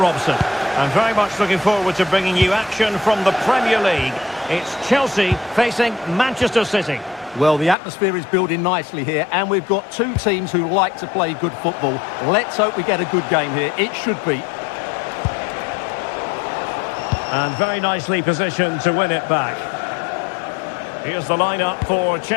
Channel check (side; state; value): right; drops out; at 7.8 s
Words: I'm very much looking forward to bringing you action from the Premier League. It's Chelsea facing Manchester City. Well, the atmosphere is building nicely here, and we've got two teams who like to play good football. Let's hope we get a good game here. It should be. And very nicely positioned to win it back. Here's the lineup for